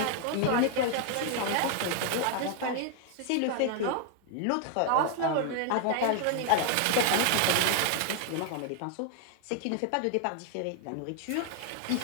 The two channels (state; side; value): different; both; correlation 0.00